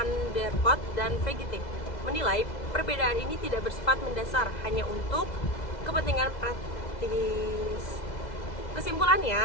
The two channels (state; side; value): late; right; 2.0 ms